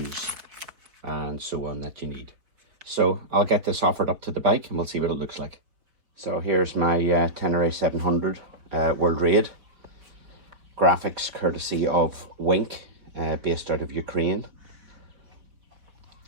and so on that you need. So I'll get this offered up to the bike and we'll see what it looks like. So here's my Tenere 700 World Raid. Graphics courtesy of Wink, based out of Ukraine.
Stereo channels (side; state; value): left; late; 4.6 ms